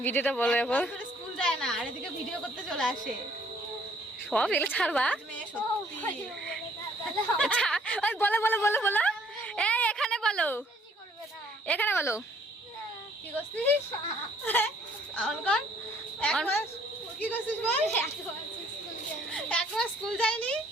ভিডিওটা বলো এখন। স্কুল যায় না আর এদিকে ভিডিও করতে চলে আসে। সব এগুলো ছাড়বা। মেয়ে সত্যি। বলো বলো বলো বলো, এই এখানে বলো, এখানে বলো। কি করছিস? অন কর। এক মাস কি করছিস বল? এক মাস স্কুল যায়নি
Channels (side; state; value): both; normal; correlation 0.62